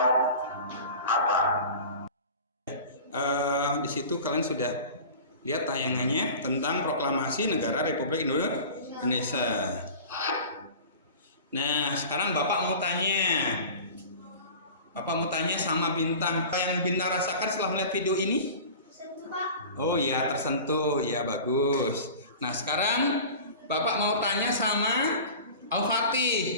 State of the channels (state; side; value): inverted; both; correlation -0.38